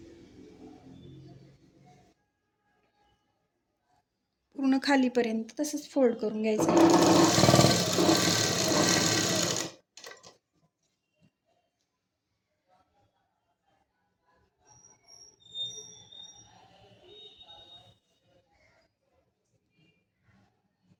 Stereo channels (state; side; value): identical; both; correlation 1.00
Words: पूर्ण खालीपर्यंत तसंच फोल्ड करून घ्यायचं.